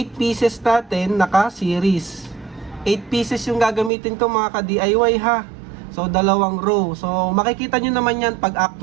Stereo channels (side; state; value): left; drops out; at 3.9 s